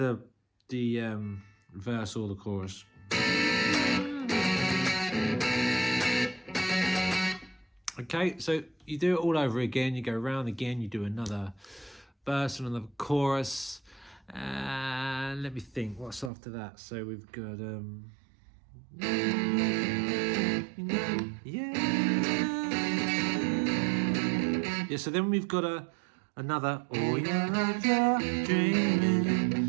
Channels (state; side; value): drops out; left; at 16.3 s